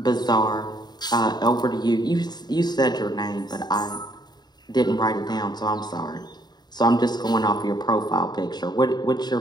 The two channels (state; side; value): late; right; 0.20 ms